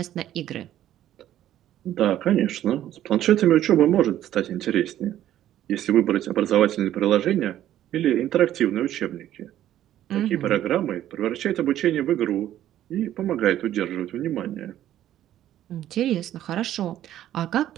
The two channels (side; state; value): left; quieter; 12.3 dB